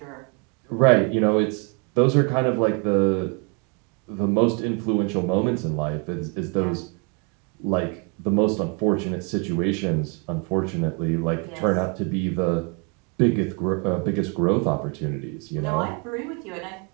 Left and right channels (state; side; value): quieter; left; 32.4 dB